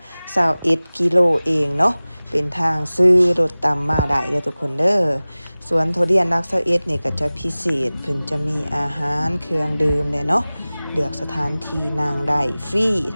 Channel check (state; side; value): inverted; both; correlation -0.98